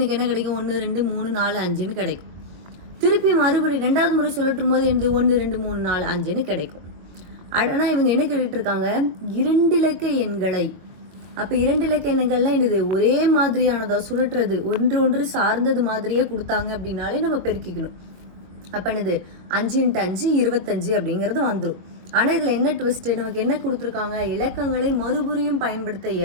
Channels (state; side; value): late; left; 22 ms